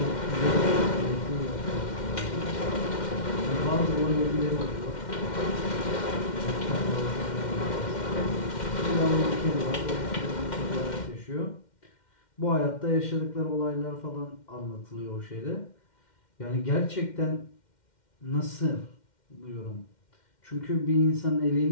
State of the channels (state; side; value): late; right; 2.1 ms